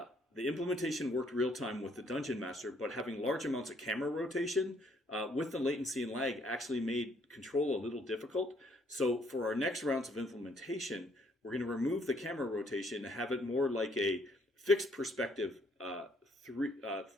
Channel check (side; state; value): both; normal; correlation 0.66